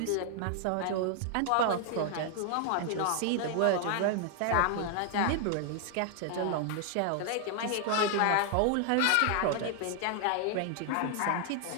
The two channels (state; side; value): different; both; correlation 0.00